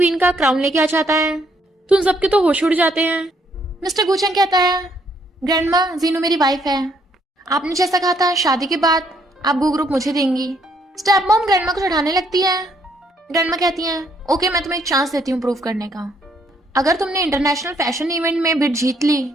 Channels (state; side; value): normal; both; correlation 0.70